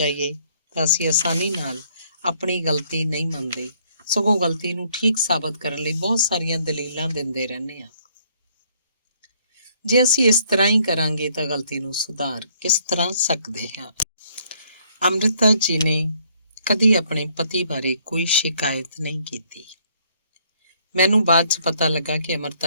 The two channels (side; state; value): both; inverted; correlation -0.65